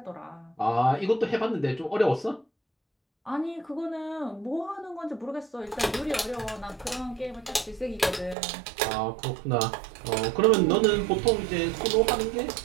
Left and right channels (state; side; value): drops out; left; at 8.3 s